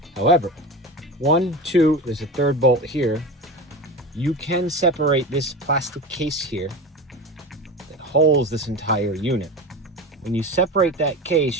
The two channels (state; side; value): normal; both; correlation 0.27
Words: However, 1, 2, there's a 3rd bolt here. You can separate this plastic case here that holds this entire unit. When you separate that